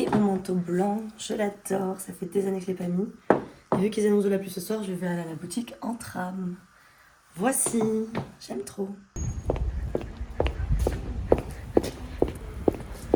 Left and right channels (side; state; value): both; identical; correlation 1.00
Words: mon manteau blanc. Je l'adore, ça fait des années que je ne l'ai pas mis. Et vu qu'ils annoncent de la pluie ce soir, je vais aller à la boutique en tram. Voici, j'aime trop.